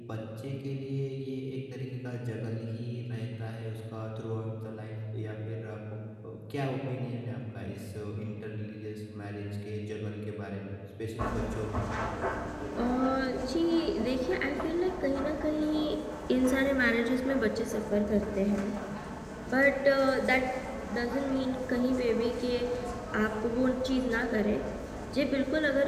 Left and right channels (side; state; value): both; identical; correlation 1.00